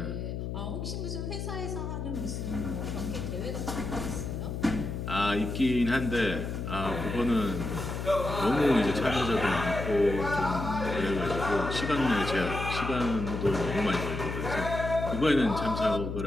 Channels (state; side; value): noise; left; hum, 4 dB below the sound